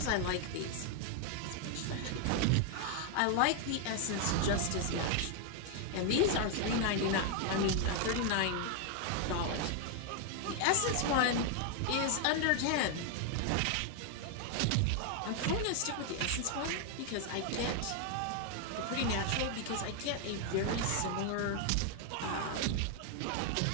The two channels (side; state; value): both; different; correlation 0.00